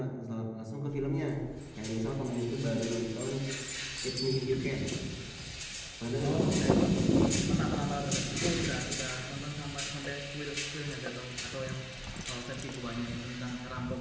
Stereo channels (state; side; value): identical; both; correlation 1.00